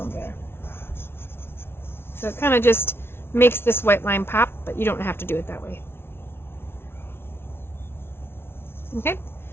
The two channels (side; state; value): right; late; 0.12 ms